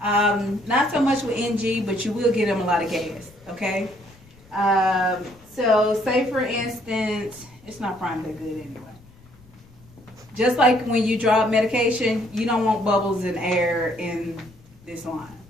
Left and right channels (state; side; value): noise; left; rumble, 26 dB below the sound